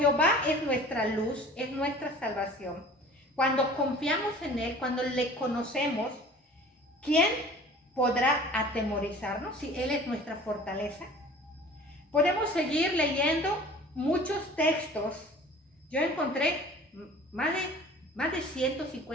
es nuestra luz, es nuestra salvación, cuando confiamos en Él, cuando le conocemos, ¿quién podrá atemorizarnos si Él es nuestra fortaleza? Podemos seguir leyendo muchos textos. Yo encontré más de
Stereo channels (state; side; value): normal; both; correlation 0.45